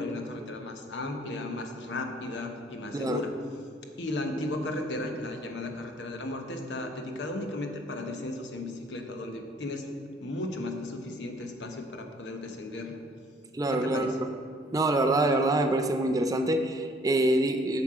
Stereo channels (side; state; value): both; normal; correlation 0.59